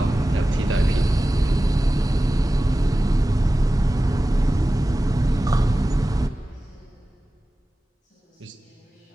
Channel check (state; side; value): normal; both; correlation 0.96